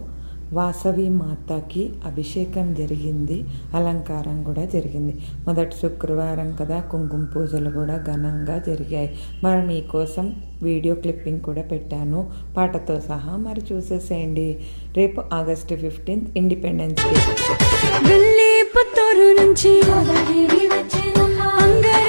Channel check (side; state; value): both; inverted; correlation -1.00